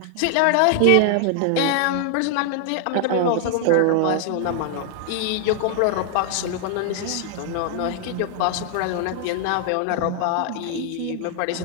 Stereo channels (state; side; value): different; both; correlation 0.00